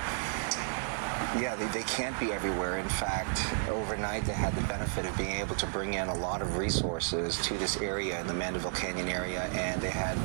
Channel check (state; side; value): silent; left; 56 dB below the other